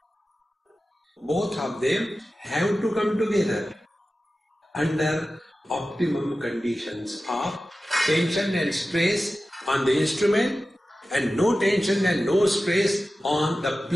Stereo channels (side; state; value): both; normal; correlation 0.94